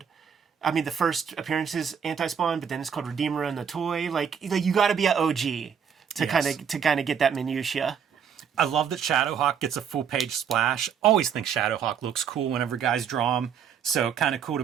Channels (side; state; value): left; quieter; 7.6 dB